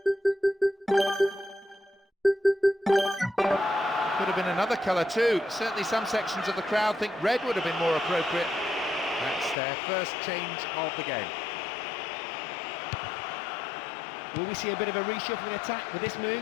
Could have been another colour too. Certainly some sections of the crowd think red would have been more appropriate. That's their first change of the game. Will we see a bit of a reshuffling attack with this move?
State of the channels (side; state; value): right; drops out; at 9.6 s